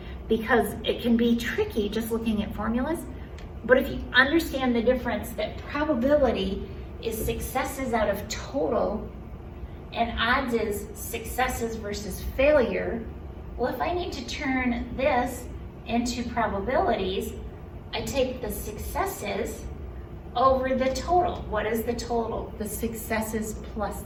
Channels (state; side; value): identical; both; correlation 1.00